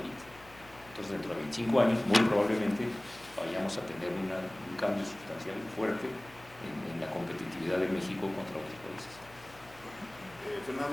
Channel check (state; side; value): noise; left; hum, 23 dB below the sound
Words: Entonces, dentro de 25 años, muy probablemente vayamos a tener un cambio sustancial fuerte en la competitividad de México contra otros países.